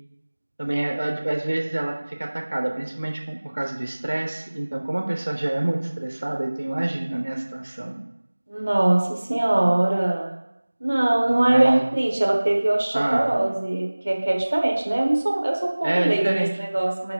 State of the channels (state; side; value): inverted; both; correlation -1.00